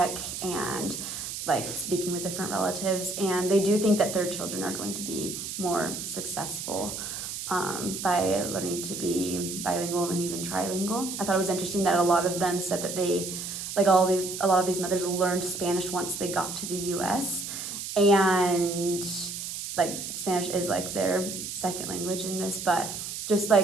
and like speaking with different relatives, and they do think that their children are going to be more successful by learning to be bilingual and even trilingual. I thought it was interesting that a lot of them said that a lot of these mothers learned Spanish once they got to the US, and like Spanish is like their second language in this, but just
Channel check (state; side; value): noise; right; hiss, 6 dB below the sound